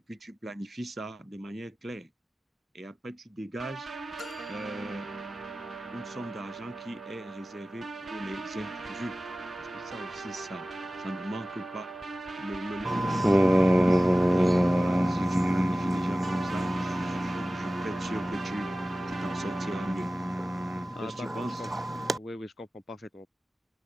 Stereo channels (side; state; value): both; normal; correlation 0.96